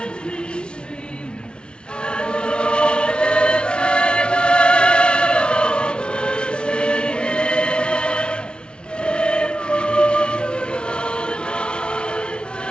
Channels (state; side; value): late; right; 0.056 ms